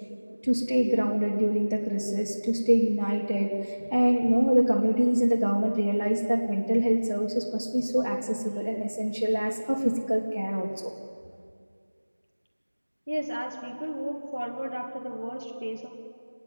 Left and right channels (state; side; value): inverted; both; correlation -1.00